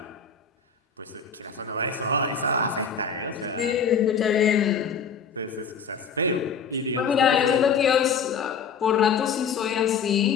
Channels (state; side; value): quieter; right; 6.1 dB